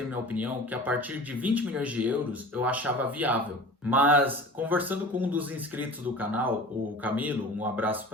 minha opinião que a partir de 20 milhões de euros eu achava viável. Mas conversando com um dos inscritos do canal, o Camilo, um abraço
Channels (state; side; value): normal; both; correlation 0.39